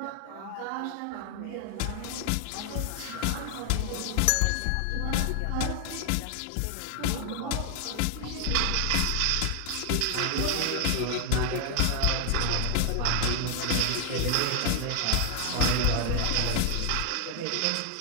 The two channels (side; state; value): both; different; correlation 0.00